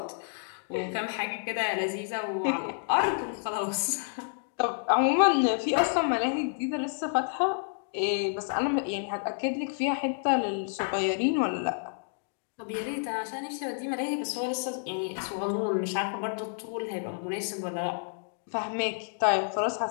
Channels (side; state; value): right; silent; digital silence